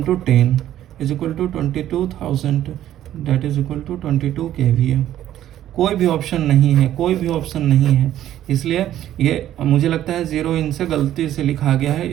10 is equal to 22,000, that is equal to 22 kVA। कोई भी ऑप्शन नहीं है, कोई भी ऑप्शन नहीं है, इसलिए ये मुझे लगता है 0 इनसे गलती से लिखा गया है,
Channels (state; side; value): quieter; left; 12.2 dB